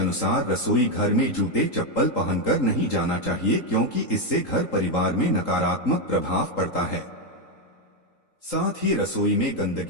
रसोई घर में जूते चप्पल पहनकर नहीं जाना चाहिए, क्योंकि इससे घर परिवार में नकारात्मक प्रभाव पड़ता है। साथ ही रसोई में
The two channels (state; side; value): late; right; 3.8 ms